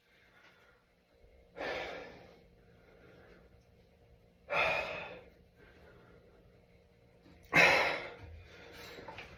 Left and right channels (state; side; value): identical; both; correlation 1.00